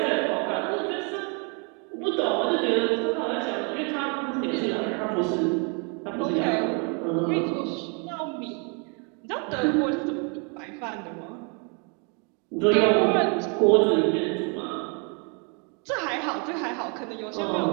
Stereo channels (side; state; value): left; quieter; 36.1 dB